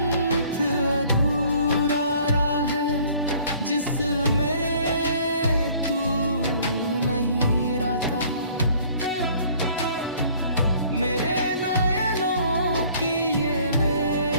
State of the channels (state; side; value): inverted; both; correlation -0.55